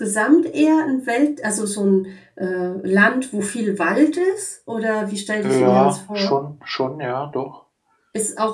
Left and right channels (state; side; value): identical; both; correlation 1.00